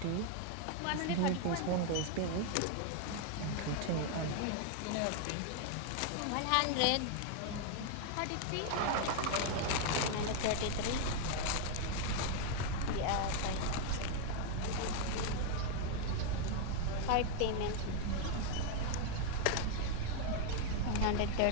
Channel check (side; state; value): both; different; correlation 0.00